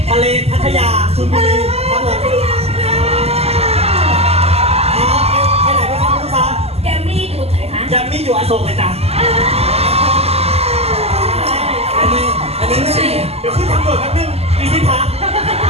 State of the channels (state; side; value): late; left; 0.29 ms